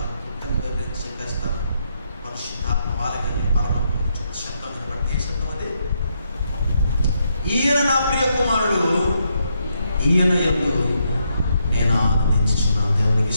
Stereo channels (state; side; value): inverted; both; correlation -0.78